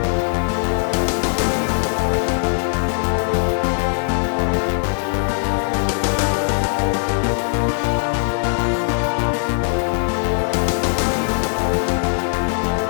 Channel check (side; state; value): right; silent; 66 dB below the other